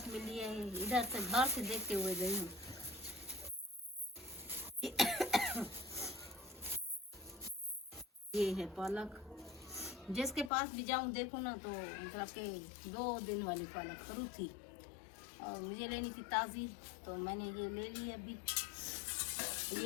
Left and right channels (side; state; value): right; drops out; at 10.5 s